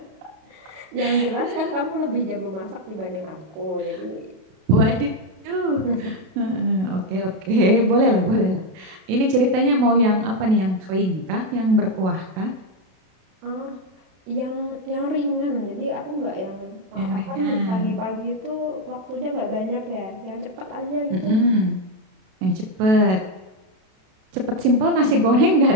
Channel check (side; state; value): left; late; 32 ms